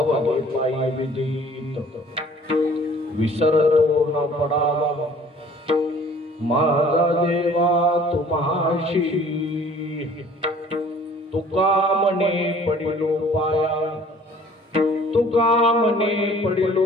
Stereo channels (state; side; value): normal; both; correlation 0.53